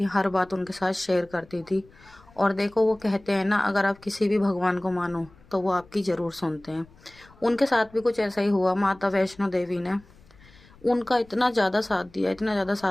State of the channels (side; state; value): left; noise; rumble, 26 dB below the sound